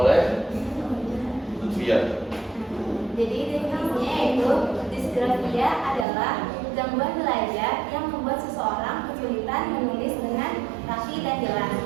oleh Lutfia. Jadi definisinya yaitu disgrafia adalah gangguan belajar yang membuat seseorang kesulitan menulis dengan rapi dan jelas.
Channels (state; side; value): drops out; left; at 6.1 s